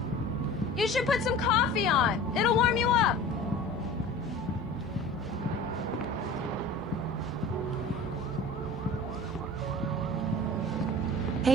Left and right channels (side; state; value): both; normal; correlation 0.39